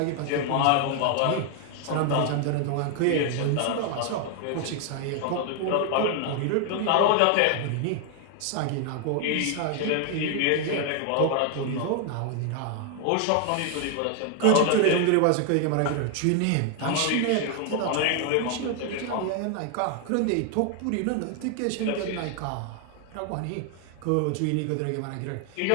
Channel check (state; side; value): different; both; correlation 0.00